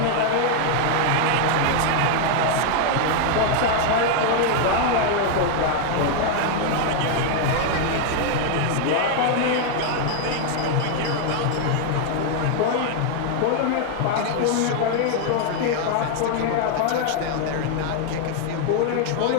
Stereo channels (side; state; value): both; different; correlation 0.00